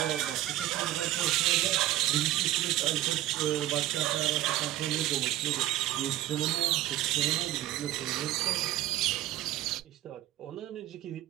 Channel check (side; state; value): left; quieter; 14.5 dB